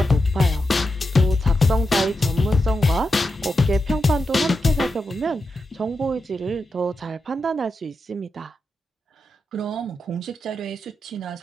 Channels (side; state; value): both; normal; correlation 0.88